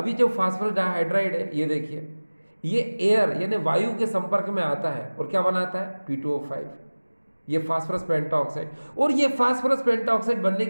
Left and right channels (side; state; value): both; inverted; correlation -1.00